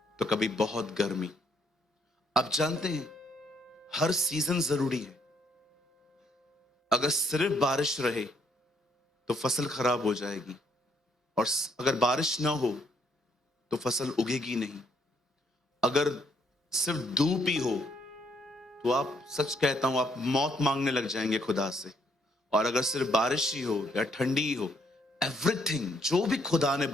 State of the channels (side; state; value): both; normal; correlation 0.70